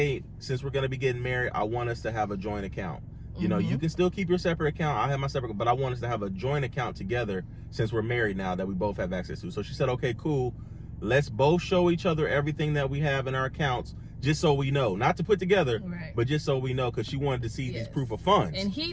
since we're going to be getting married, I want us to have a joint account. You can still keep your separate account. I have my separate, but I want us to have a joint account together since we're married now that we both have access to. So she said, okay, cool. Let's both show each other everything that we have in our accounts, just so we know. Not to put together, but just so we know, because she wanted to see these proof of funds. And he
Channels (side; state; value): both; identical; correlation 1.00